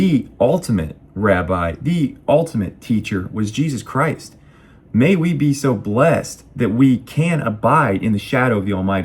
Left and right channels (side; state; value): both; identical; correlation 1.00